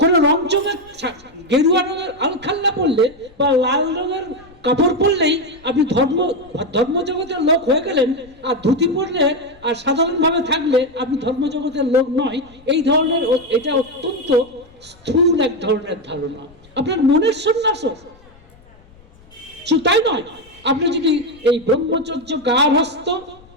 রংচঙে গেরুয়া রঙের আলখাল্লা পড়লে বা লাল রঙের কাপড় পরলেই আপনি ধর্মজগতের লোক হয়ে গেলেন, আর ধুতি পরলে আর সাধারণভাবে থাকলে আপনি ধর্মজগতের লোক নয়। এই ধরনের, এটা অত্যন্ত স্থূল এক ধরনের ধারণা। আপনার মনের সন্ন্যাস, তাই নয়, আপনি যদি এই ব্রহ্মচর্য, গার্হস্থ্য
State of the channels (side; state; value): left; noise; rumble, 26 dB below the sound